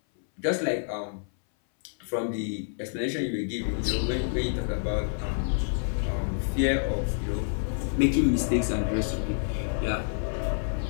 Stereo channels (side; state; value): right; silent; 59 dB below the other